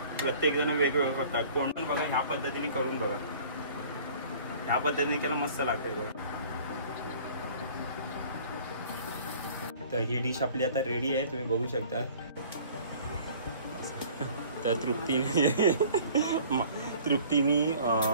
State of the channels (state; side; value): inverted; both; correlation -0.50